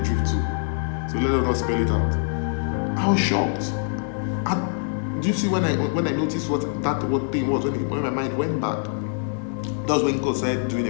drift too. So let us not spell it out. I was shocked. Do you see when I noticed what thing was, when my mind went back? That was when God started doing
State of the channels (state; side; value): silent; right; 63 dB below the other